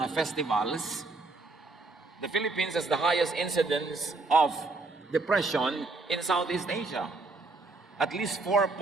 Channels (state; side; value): quieter; left; 3.5 dB